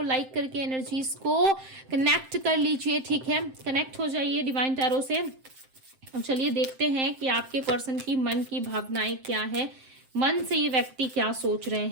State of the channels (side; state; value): left; late; 7.7 ms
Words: लाइक करके एनर्जीज को कनेक्ट कर लीजिए। ठीक है, कनेक्ट हो जाइए डिवाइन टैरो से। अब चलिए देखते हैं कि आपके पर्सन की मन की भावनाएं क्या है, मन से ये व्यक्ति क्या सोच रहे